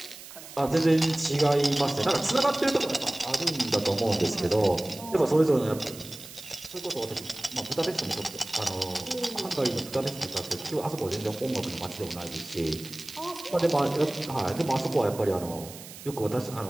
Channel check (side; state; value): right; noise; hiss, 15 dB below the sound